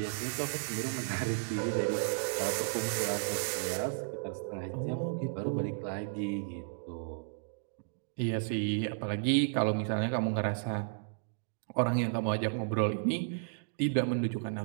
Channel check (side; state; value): left; silent; digital silence